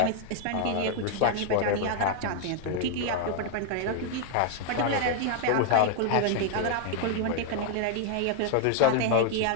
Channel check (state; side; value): different; both; correlation 0.00